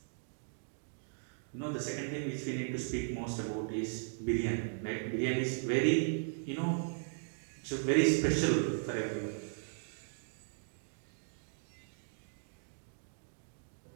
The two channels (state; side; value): silent; left; digital silence